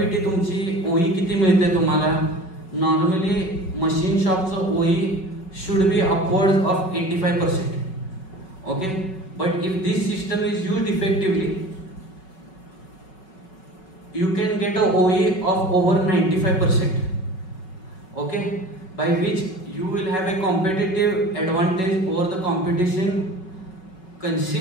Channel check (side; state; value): right; late; 5.3 ms